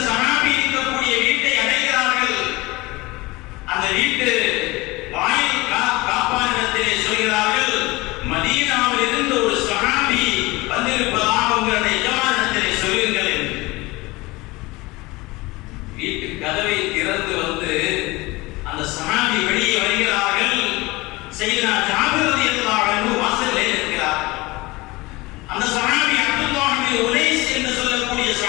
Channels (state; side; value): quieter; right; 22.1 dB